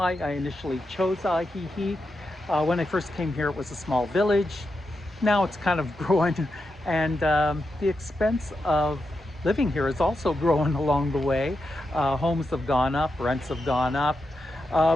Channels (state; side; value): normal; both; correlation 0.87